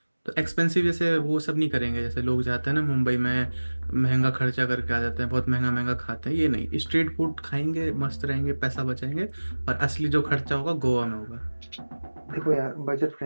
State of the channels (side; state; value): both; inverted; correlation -1.00